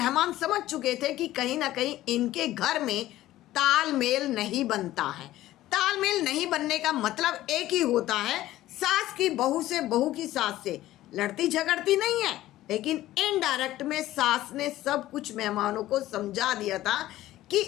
समझ चुके थे कि कहीं ना कहीं इनके घर में तालमेल नहीं बनता है। तालमेल नहीं बनने का मतलब एक ही होता है, सास की बहू से, बहू की सास से लड़ती झगड़ती नहीं है। लेकिन इनडायरेक्ट में सास ने सब कुछ मेहमानों को समझा दिया था कि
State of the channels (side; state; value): right; quieter; 15.1 dB